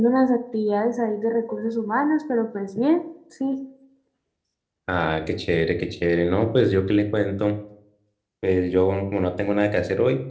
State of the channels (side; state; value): both; identical; correlation 1.00